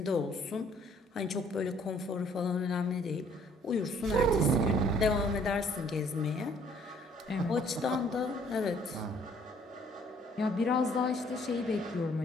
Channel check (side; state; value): both; normal; correlation 0.61